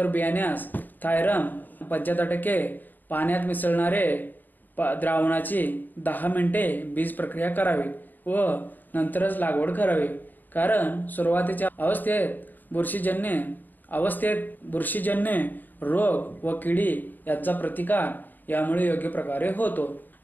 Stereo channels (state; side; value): late; right; 0.088 ms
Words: बियाण्यास थायरम 75% पाण्यात मिसळणारे द्रावणाची 10 मिनिटे बीज प्रक्रिया करावी व नंतरच लागवड करावी. कारण सुरुवातीच्या बुरशीजन्य रोग व किडी यांचा प्रतिकार यामुळे योग्य प्रकारे होतो.